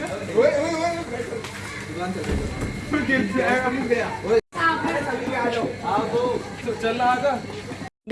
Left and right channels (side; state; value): both; identical; correlation 1.00